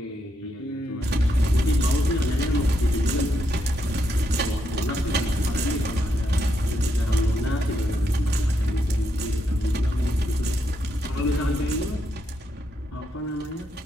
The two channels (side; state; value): both; normal; correlation 0.80